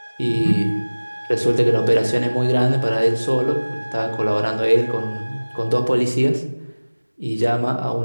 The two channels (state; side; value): inverted; both; correlation -1.00